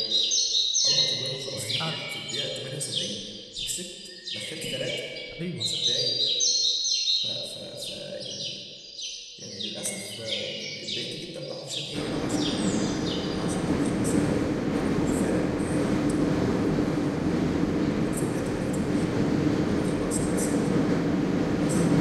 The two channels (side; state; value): both; identical; correlation 1.00